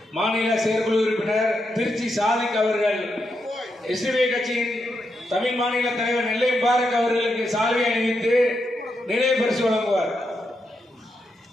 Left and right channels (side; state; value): both; normal; correlation 0.83